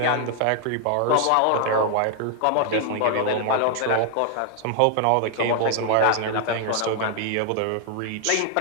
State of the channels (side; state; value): both; different; correlation 0.00